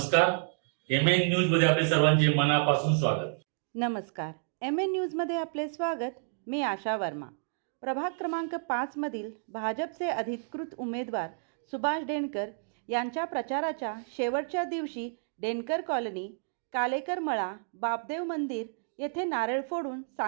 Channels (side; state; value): left; silent; digital silence